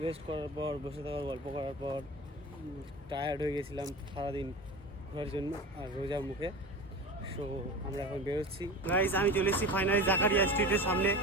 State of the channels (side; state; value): both; normal; correlation 0.31